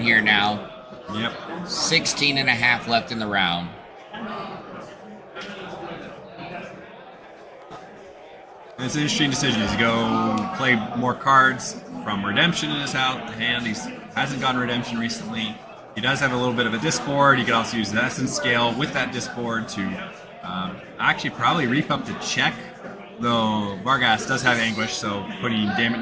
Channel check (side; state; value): both; identical; correlation 1.00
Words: now. Yep. 16 and a half left in the round. It's an interesting decision. He's go play more cards from Redemption in his hand. He hasn't gotten Redemption recently. He does have a little bit of a disboard. You could also use the Essence Scale with that disboard to actually probably reap up the check. Though Vargas does have Anguish, so putting